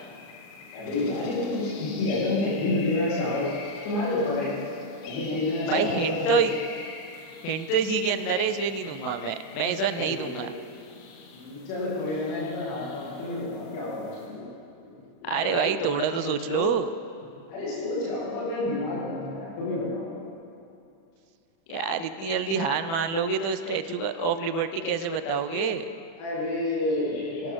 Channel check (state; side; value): late; right; 36 ms